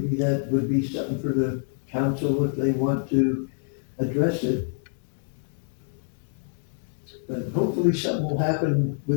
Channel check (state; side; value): silent; right; digital silence